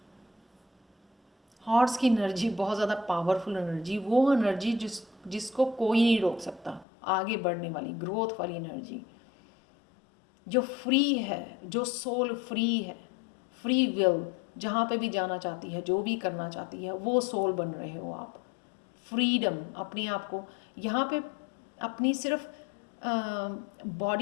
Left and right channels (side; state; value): right; drops out; at 6.9 s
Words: हॉर्स की एनर्जी बहुत ज़्यादा पावरफुल एनर्जी, वो एनर्जी जिसको कोई नहीं रोक सकता, आगे बढ़ने वाली, ग्रोथ वाली एनर्जी, जो फ्री है, जो सोल फ्री है, फ्री विल, जहाँ पे भी जाना चाहती है, जो भी करना चाहती है, वो सोल बन रहे हो आप। फ्रीडम, अपने आप को यहाँ पे अपनी सिर्फ